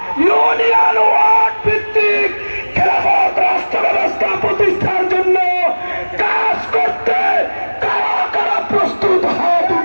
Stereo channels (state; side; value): inverted; both; correlation -1.00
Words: ইউনিয়ন ওয়ার্ড ভিত্তিক খেলাফত রাষ্ট্র ব্যবস্থা প্রতিষ্ঠার জন্য কাজ করতে কারা কারা প্রস্তুত হাত